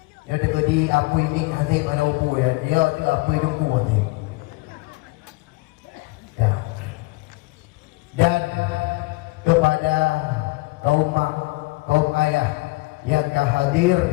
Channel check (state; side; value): quieter; right; 23.8 dB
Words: Yang ada di apa ini hasil mana lupu ya. Dia tu apa lupu teh. Ya. Dan kepada kaum ayah yang hadir